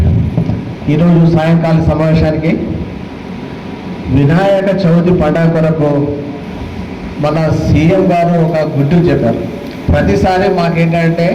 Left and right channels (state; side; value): identical; both; correlation 1.00